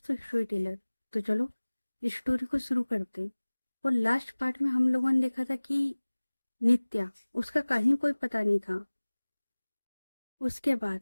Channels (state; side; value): inverted; both; correlation -1.00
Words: स्टोरी टेलर। तो चलो इस स्टोरी को शुरू करते हैं। और लास्ट पार्ट में हम लोगों ने देखा था कि नित्या, उसका कहीं कोई पता नहीं था। उसके